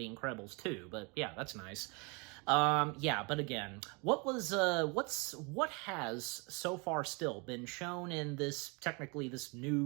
Incredibles too, but yeah, that's nice. But again, what has so far still been shown in this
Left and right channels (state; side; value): quieter; left; 31.0 dB